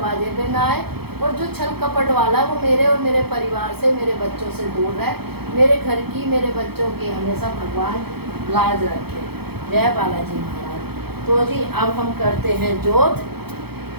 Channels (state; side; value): late; left; 0.96 ms